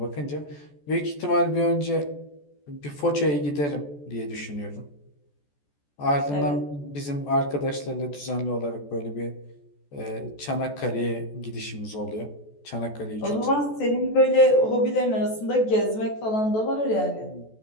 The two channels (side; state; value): right; late; 14 ms